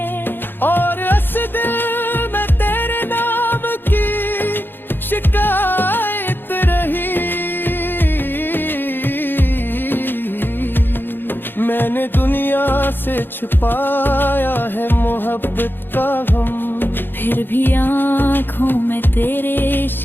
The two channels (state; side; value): late; right; 0.099 ms